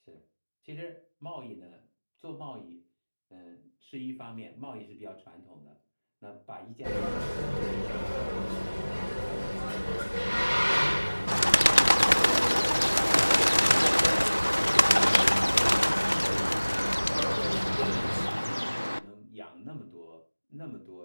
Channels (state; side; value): inverted; both; correlation -1.00